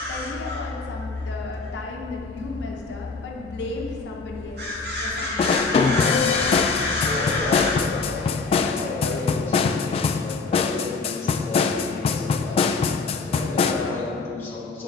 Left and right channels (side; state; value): right; quieter; 4.2 dB